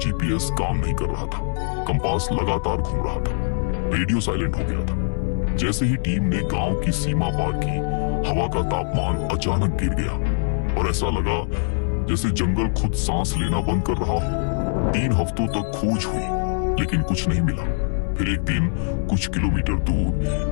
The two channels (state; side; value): silent; right; 62 dB below the other